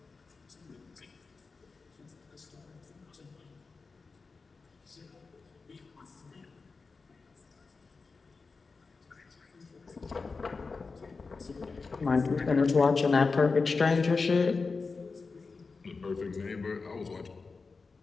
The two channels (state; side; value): quieter; right; 4.3 dB